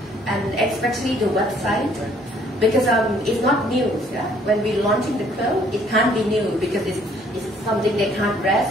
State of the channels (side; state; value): both; normal; correlation 0.62